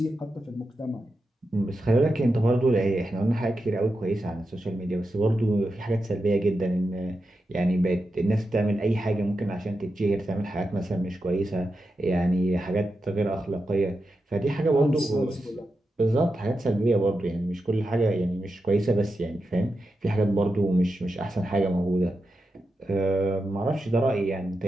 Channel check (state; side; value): normal; both; correlation 0.89